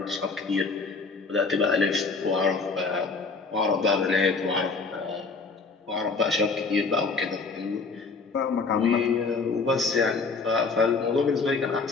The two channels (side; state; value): right; quieter; 4.3 dB